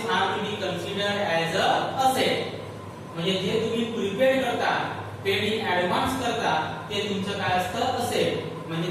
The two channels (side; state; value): both; identical; correlation 1.00